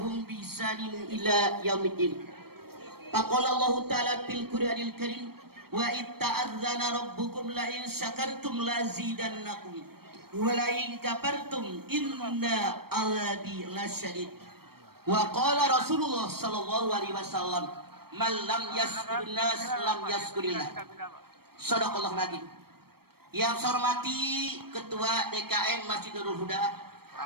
bi ihsanin ila yaumiddin. Faqala Allah ta'ala fil Qur'anil Karim wa itta'adzana rabbukum la in syakartum la zidannakum wa la in kafartum inna azabi lasyadid. Wa qala Rasulullah sallallahu alaihi wasallam man lam yaskurun nas lam yaskurillah. Shadaqallahu nabi. Yang saya hormati Ketua DKM Masjid Nurul Huda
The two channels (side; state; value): left; late; 0.95 ms